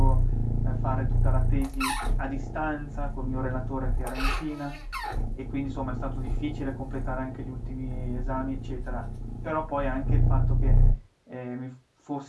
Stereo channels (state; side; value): identical; both; correlation 1.00